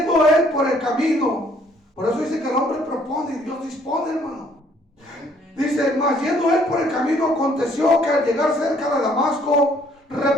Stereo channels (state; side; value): normal; both; correlation 0.63